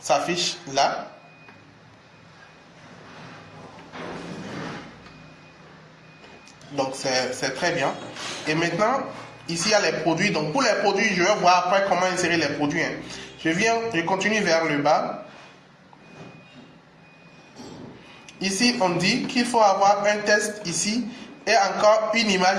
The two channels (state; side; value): identical; both; correlation 1.00